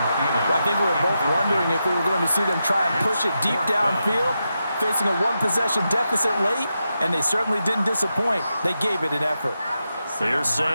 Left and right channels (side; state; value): both; inverted; correlation -0.87